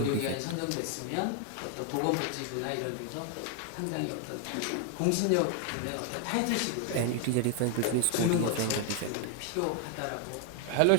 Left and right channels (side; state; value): both; different; correlation 0.00